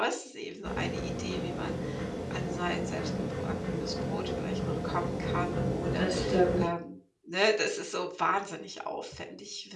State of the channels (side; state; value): both; identical; correlation 1.00